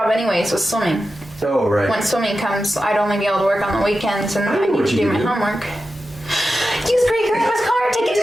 anyways with swimming. oh, right. When swimming comes, I'd only be able to work on the weekends, and I know I need what to you do my do. homework. Use great grandma's car, take it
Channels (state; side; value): normal; both; correlation 0.91